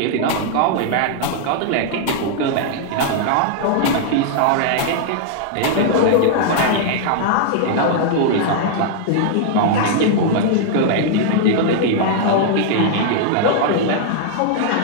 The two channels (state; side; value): different; both; correlation -0.01